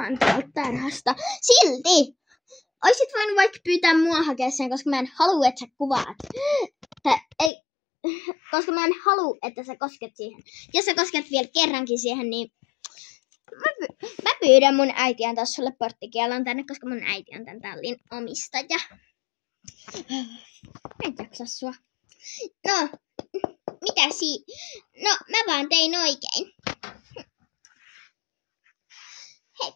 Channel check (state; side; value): drops out; right; at 7.5 s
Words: tuolta tarhasta. Silti! Oisit voinut vaikka pyytää mua hakea sen, koska mä en halua, että sä kuvaat. Koska mä en halua, että sä kosket siihen. Jos sä kosket vielä kerrankin siihen, niin mä pyydän mun äiti antaa sulle porttikielon tänne, koska mun äiti on tän tallin omistaja. Mä en jaksa sua. No, No, mä vaan tein oikein.